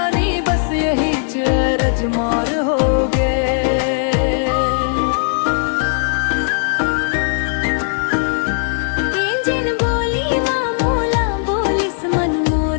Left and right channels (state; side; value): silent; right; digital silence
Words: बस यही चरज मोर हो गए। जिन बोली माँ मोला बोलिस मन